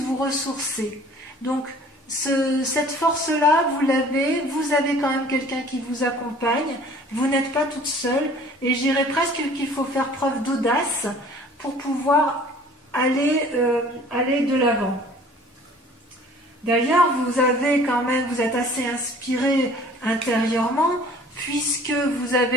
vous ressourcer. Donc, cette force-là, vous avez quand même quelqu'un qui vous accompagne, vous n'êtes pas toute seule, et je dirais presque qu'il faut faire preuve d'audace pour pouvoir aller de l'avant. D'ailleurs, vous êtes assez inspiré intérieurement, puisque vous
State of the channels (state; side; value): normal; both; correlation 0.50